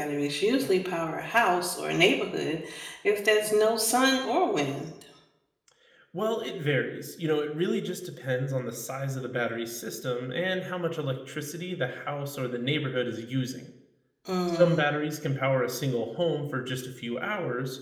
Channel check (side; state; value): both; identical; correlation 1.00